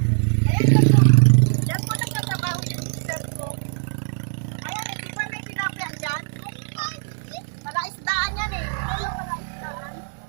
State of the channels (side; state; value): left; silent; digital silence